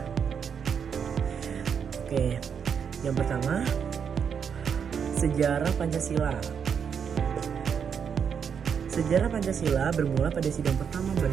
Oke, yang pertama, sejarah Pancasila. Sejarah Pancasila bermula pada sidang pertama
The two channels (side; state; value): left; quieter; 7.1 dB